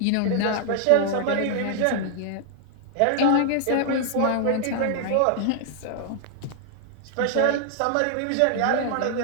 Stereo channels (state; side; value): different; both; correlation -0.01